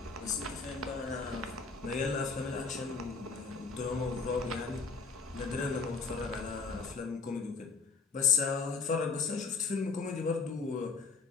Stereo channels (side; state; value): right; quieter; 4.5 dB